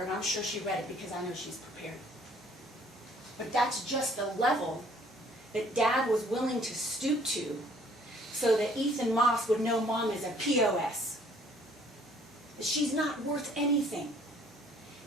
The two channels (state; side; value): normal; both; correlation 0.59